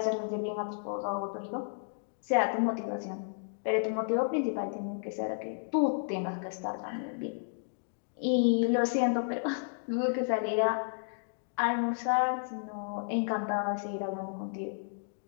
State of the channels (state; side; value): silent; right; digital silence